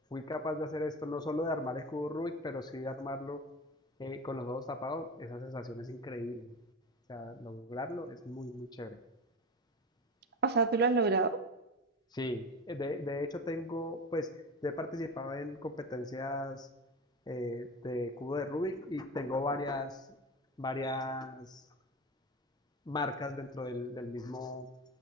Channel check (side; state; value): both; normal; correlation 0.25